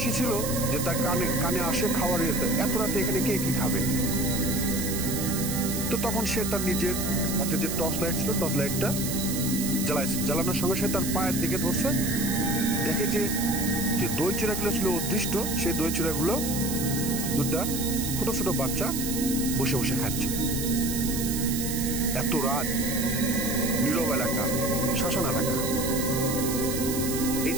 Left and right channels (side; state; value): right; noise; hiss, 4 dB below the sound